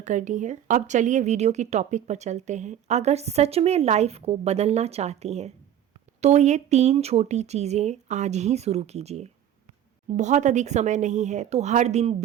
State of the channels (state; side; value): quieter; left; 10.5 dB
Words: करनी है। अब चलिए वीडियो की टॉपिक पर चलते हैं। अगर सच में लाइफ को बदलना चाहती हैं तो ये 3 छोटी चीज़ें आज ही शुरू कीजिए। बहुत अधिक समय नहीं है तो हर दिन